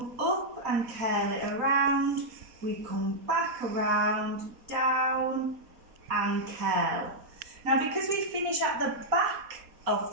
up and curl it around, we come back around, down and curl. Now because we finish at the back of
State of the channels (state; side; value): late; left; 4.2 ms